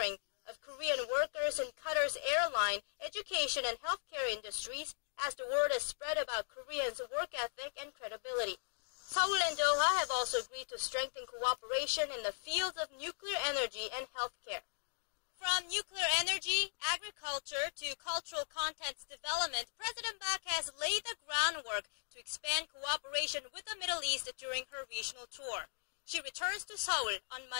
of Korean workers in Qatar's airline, education, and healthcare industries as the word has spread about Koreans' work ethic and credibility. Seoul and Doha have also agreed to strengthen cooperation in the fields of nuclear energy and healthcare. From nuclear energy, agriculture, to cultural contents development, President Park has laid the groundwork to expand cooperation with the Middle East during her regional tour. She returns to Seoul on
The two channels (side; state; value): right; silent; digital silence